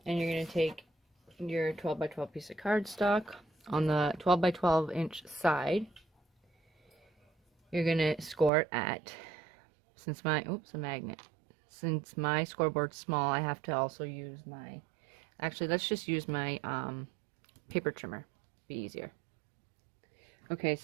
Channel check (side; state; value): left; drops out; at 8.5 s